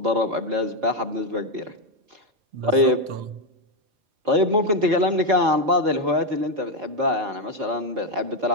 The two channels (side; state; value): left; late; 4.5 ms